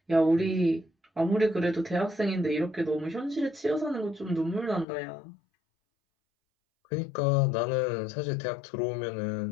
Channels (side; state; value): right; drops out; at 4.9 s